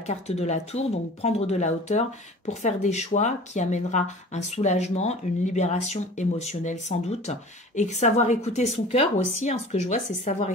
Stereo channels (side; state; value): both; normal; correlation 0.42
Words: de la tour, donc prendre de la hauteur pour faire des choix qui amènera un soulagement, une libération émotionnelle sans doute, et savoir écouter son cœur aussi, hein, ce que je vois c'est savoir